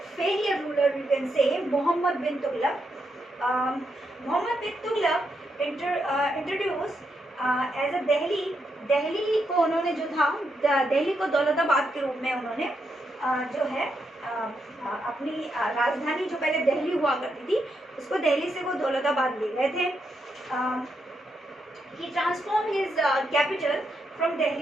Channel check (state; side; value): normal; both; correlation 0.81